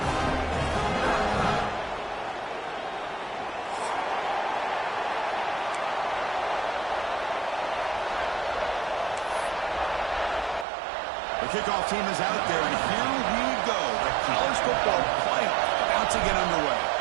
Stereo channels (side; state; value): left; drops out; at 10.7 s